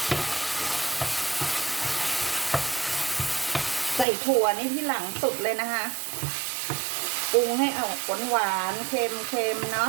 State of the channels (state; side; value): drops out; left; at 4.0 s